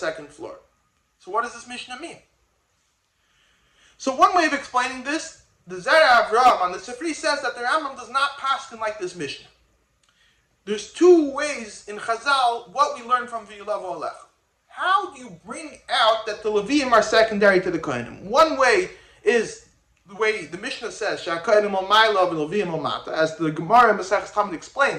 floor. So what does this Mishnah mean? So one way of explaining this, the Zera Avraham on the Sifri says that the Rambam does not paskin like this Mishnah. There's two ways in Chazal what we learn from V'yulavu Alecha. How do you bring out that the Levi'im are secondary to the Kohanim? One way is the way the Mishnah says, Sha'kohanim al Ma'ila v'Levi'im al Mata, as the Gemara in Maseches Tamid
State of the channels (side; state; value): both; identical; correlation 1.00